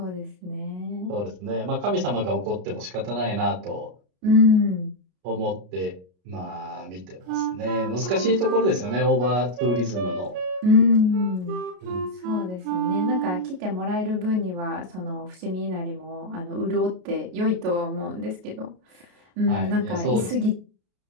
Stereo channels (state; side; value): late; left; 33 ms